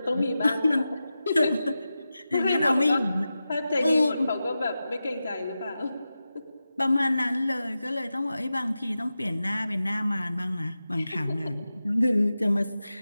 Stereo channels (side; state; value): both; inverted; correlation -0.93